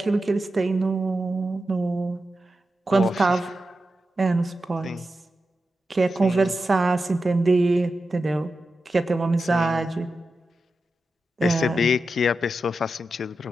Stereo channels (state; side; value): normal; both; correlation 0.91